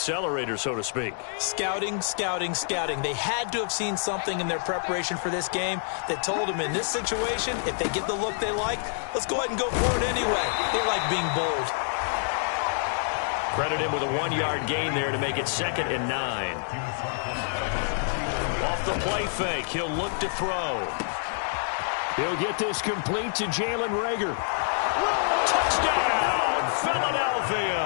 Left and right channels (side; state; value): right; silent; digital silence